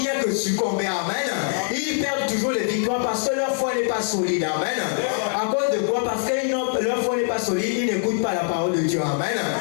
que succomber. Amen. Ils perdent toujours les victoires parce que leur foi n'est pas solide. Amen. À cause de quoi? Parce que leur foi n'est pas solide, ils n'écoutent pas la parole de Dieu. Amen.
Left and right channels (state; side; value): silent; right; digital silence